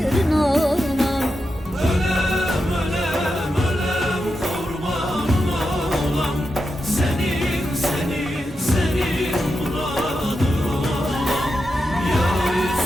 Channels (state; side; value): normal; both; correlation 0.88